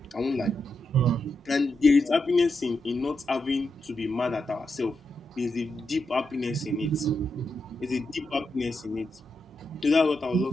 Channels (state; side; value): normal; both; correlation 0.85